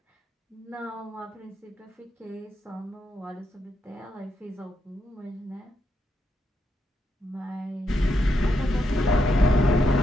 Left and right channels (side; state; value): both; normal; correlation 0.82